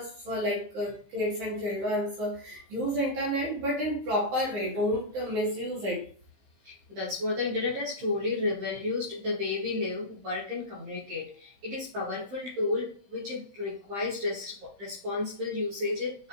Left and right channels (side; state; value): left; late; 15 ms